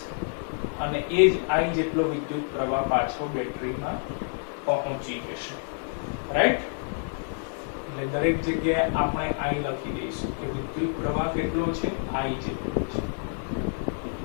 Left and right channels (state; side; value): silent; right; 57 dB below the other